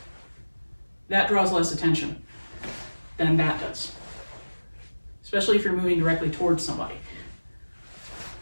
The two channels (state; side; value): inverted; both; correlation -1.00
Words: that draws less attention than that does, especially if you're moving directly towards somebody.